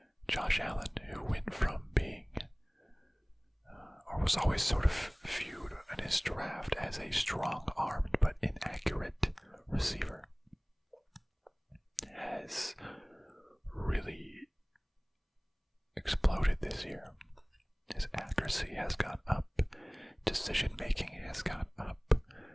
Josh Allen, who went from being, or was always sort of viewed in his draft as a strong-armed but inaccurate receiver, has really exploded this year. His accuracy has gone up. Decision making has gone up.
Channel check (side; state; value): both; identical; correlation 1.00